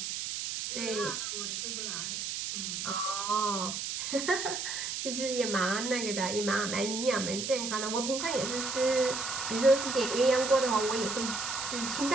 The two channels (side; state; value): right; noise; hiss, 4 dB below the sound